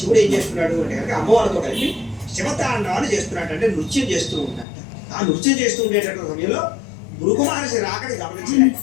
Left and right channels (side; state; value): right; drops out; at 4.7 s